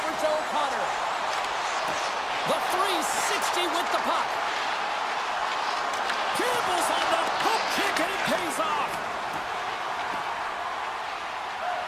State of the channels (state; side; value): identical; both; correlation 1.00